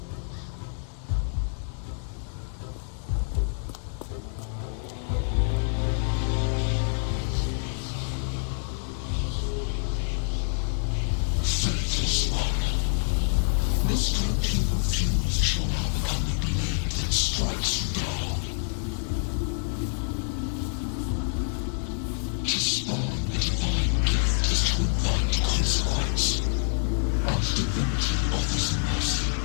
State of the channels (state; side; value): silent; right; digital silence